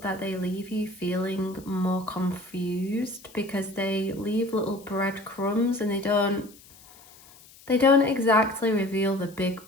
that they leave you feeling more confused because they leave little breadcrumbs and they don't exactly reveal the big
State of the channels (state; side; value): noise; left; hiss, 23 dB below the sound